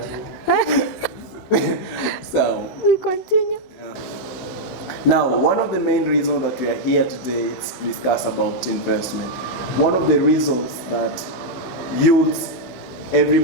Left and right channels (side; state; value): right; late; 16 ms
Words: So we continue. Now, one of the main reasons that we are here today is to discuss about investment. One of the reasons that youths,